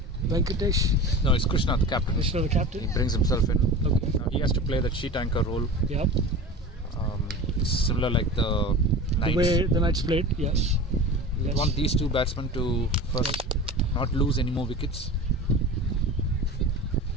Venkatesh. No, it's Krishna, the captain. Krishna, the captain. He brings himself in. Okay. Now he has to play that sheet anchor role. Yep. Similar like the Knights. The way the Knights played, yes. We want these 2 batsmen to first not lose any more wickets.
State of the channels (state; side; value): normal; both; correlation 0.33